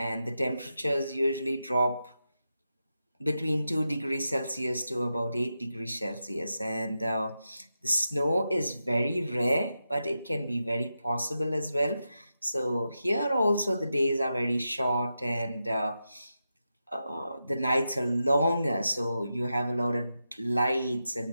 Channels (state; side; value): inverted; both; correlation -0.88